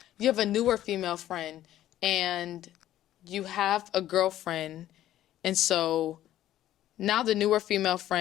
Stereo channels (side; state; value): right; quieter; 13.0 dB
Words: you have a newer female friend and you have a girlfriend, and so now the newer female